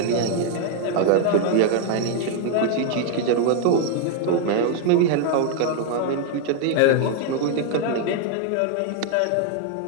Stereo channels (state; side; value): different; both; correlation 0.00